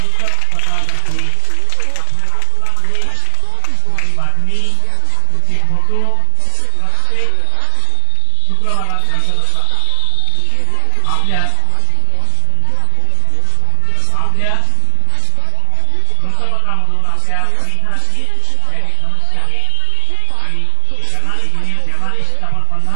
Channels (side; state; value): both; different; correlation 0.00